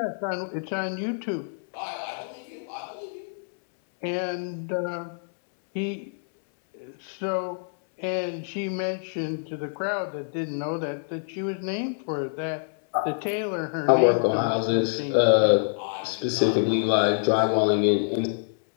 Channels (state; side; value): silent; right; 61 dB below the other